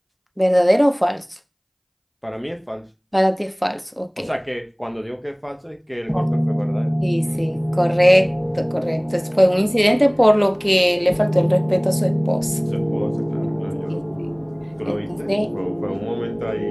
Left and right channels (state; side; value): identical; both; correlation 1.00